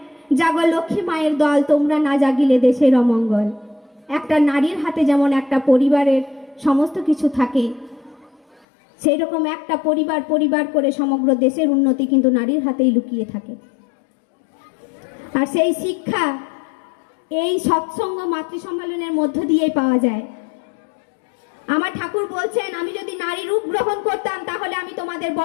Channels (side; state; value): right; drops out; at 8.7 s